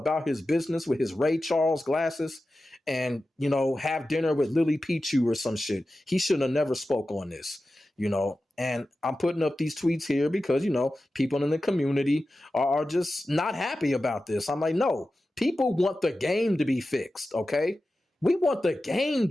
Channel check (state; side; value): normal; both; correlation 0.93